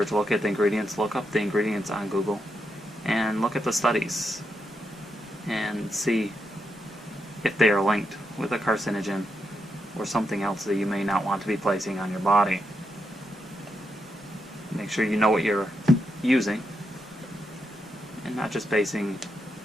look at the ingredients, look up the ingredients on Google, and look at the studies and see if they are linked with a carcinogen or something else that you may not want to be placing on your body. Make sure you know what you're using and not just basing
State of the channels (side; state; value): both; normal; correlation 0.83